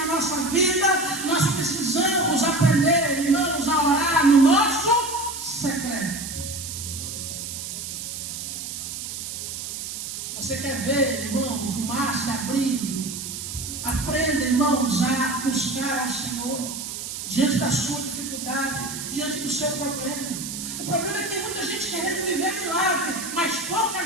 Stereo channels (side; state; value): right; noise; hiss, 7 dB below the sound